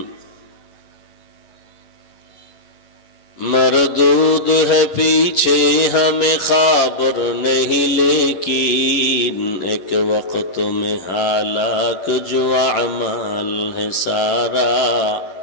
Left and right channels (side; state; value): right; late; 11 ms